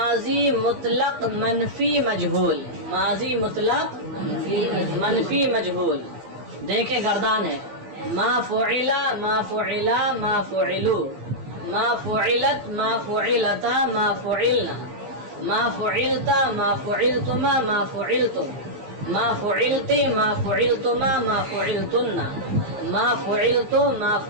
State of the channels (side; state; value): left; late; 15 ms